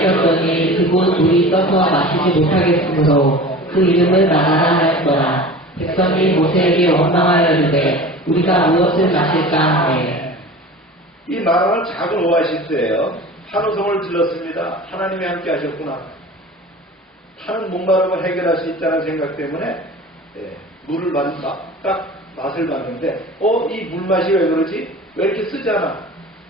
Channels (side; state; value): both; normal; correlation 0.37